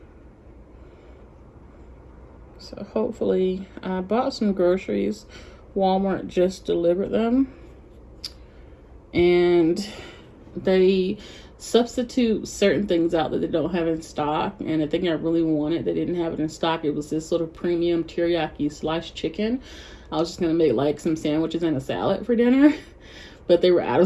So hopefully, I bought some groceries. Walmart just delivered them. And they substitute certain things out that they don't have in stock. And the thing I really wanted, they didn't have it in stock. It was this sort of premium teriyaki sliced chicken. I was just gonna make like some sandwiches and a salad for dinner, but they were out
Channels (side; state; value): both; identical; correlation 1.00